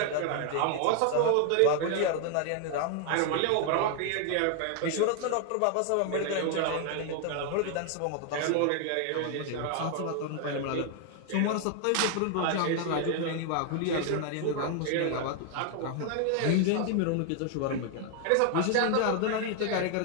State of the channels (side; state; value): both; different; correlation 0.00